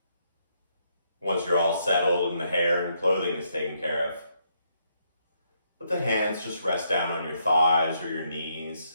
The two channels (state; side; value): inverted; both; correlation -0.75